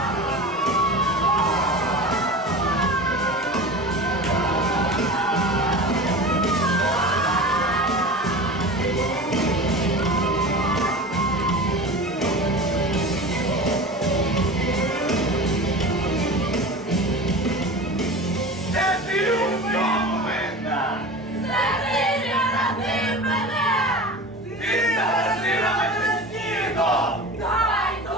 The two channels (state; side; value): normal; both; correlation 0.33